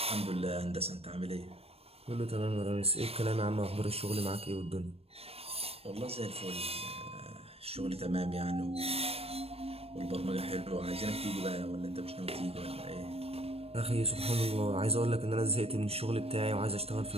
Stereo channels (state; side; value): late; left; 0.28 ms